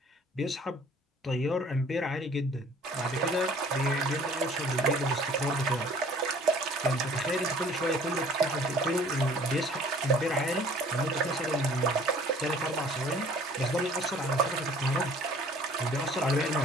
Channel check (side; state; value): both; normal; correlation 0.53